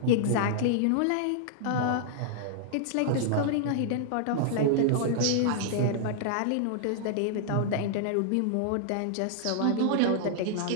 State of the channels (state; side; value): different; both; correlation -0.01